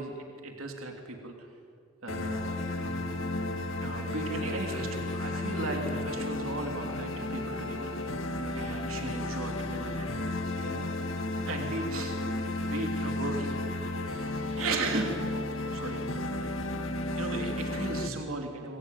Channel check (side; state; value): both; normal; correlation 0.43